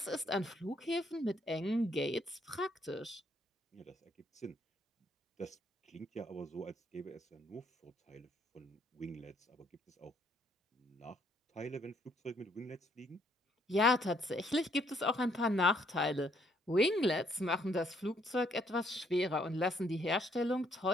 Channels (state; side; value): normal; both; correlation 0.69